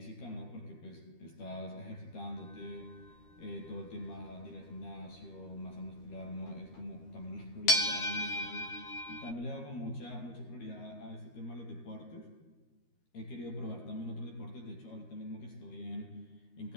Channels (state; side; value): late; right; 13 ms